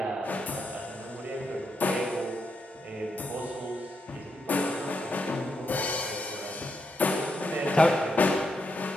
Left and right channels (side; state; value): both; normal; correlation 0.82